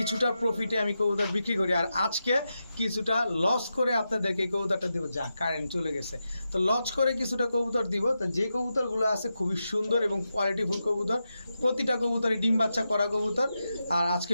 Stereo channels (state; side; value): inverted; both; correlation -0.89